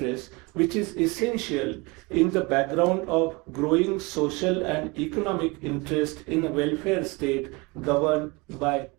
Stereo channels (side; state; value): left; quieter; 26.5 dB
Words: which is essential in the background of growing social and economic interest in a welfare state governed by